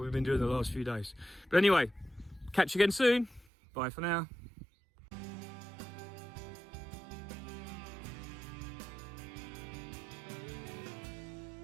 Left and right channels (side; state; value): left; drops out; at 3.5 s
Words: been doing the last few days. But anyway, catch you again soon. Bye for now.